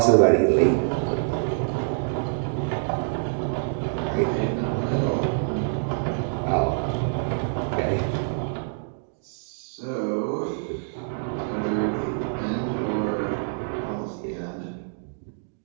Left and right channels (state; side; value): silent; left; digital silence